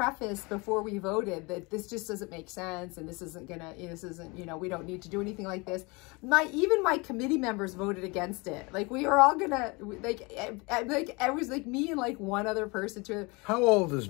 before we voted that this just doesn't make sense, and this isn't, we don't need to do anything like this. Even my committee members voted against it. Like, we were all gonna, it was like me and like one other person to. How old is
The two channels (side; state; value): right; quieter; 27.1 dB